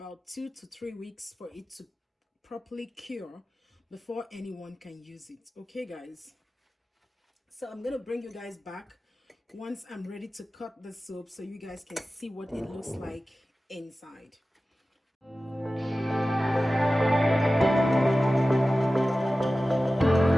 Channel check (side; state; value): both; normal; correlation 0.96